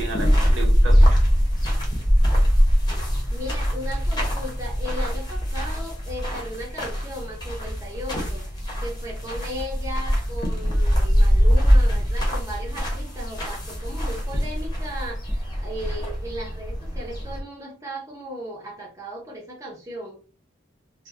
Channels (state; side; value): normal; both; correlation 0.94